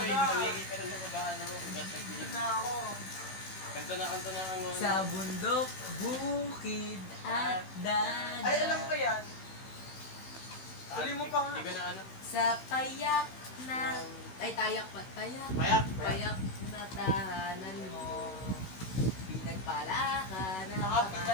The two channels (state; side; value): late; right; 16 ms